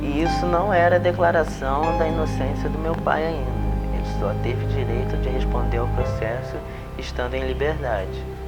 E isso não era declaração da inocência do meu pai ainda. Ele só teve direito de responder ao processo estando em liberdade.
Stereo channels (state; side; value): identical; both; correlation 1.00